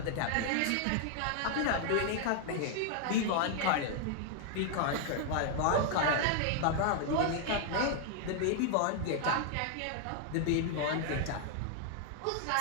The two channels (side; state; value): both; different; correlation 0.00